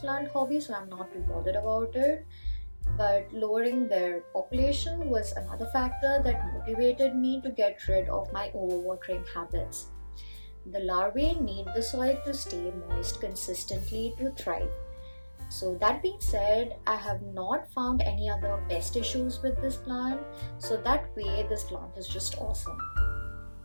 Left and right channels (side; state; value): both; inverted; correlation -1.00